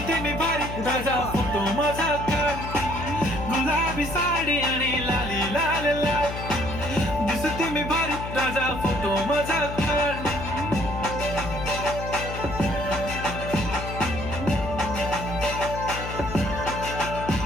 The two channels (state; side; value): noise; left; hum, 7 dB below the sound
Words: मी भारी ताजा फोटो माझा काढ गुलाबी साडी आणि लाली लाल लाल दिसते मी भारी ताजा फोटो माझा काढ